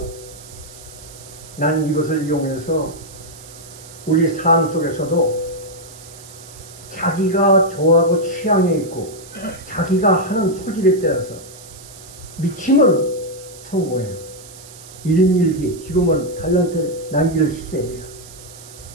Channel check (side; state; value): right; noise; hiss, 18 dB below the sound